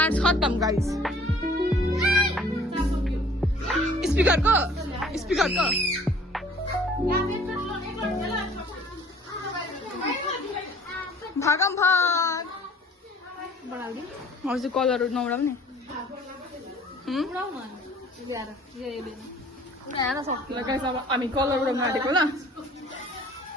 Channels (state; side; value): normal; both; correlation 0.52